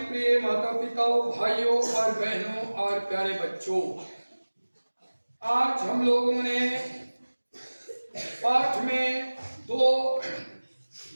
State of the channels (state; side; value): inverted; both; correlation -1.00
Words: प्रिय माता पिताओं, भाइयों और बहनों और प्यारे बच्चों, आज हम लोगों ने पाठ में दो